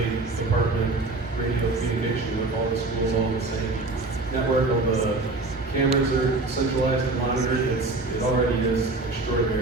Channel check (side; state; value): left; quieter; 3.3 dB